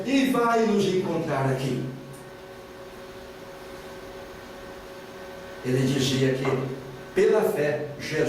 e vai nos encontrar aqui. Ele dizia que, pela fé,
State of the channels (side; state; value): both; identical; correlation 1.00